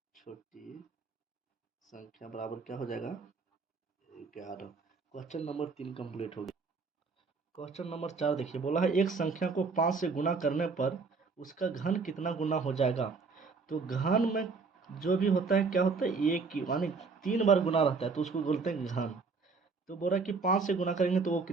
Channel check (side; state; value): left; quieter; 4.6 dB